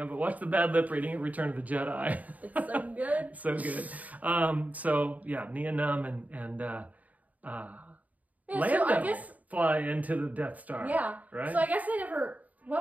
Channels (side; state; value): left; late; 0.073 ms